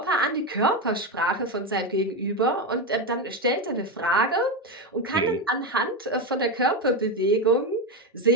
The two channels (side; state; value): both; normal; correlation 0.13